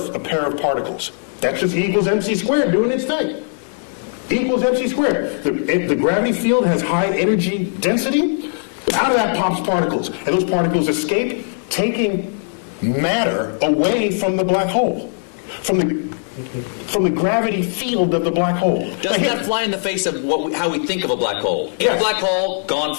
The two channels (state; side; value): silent; right; digital silence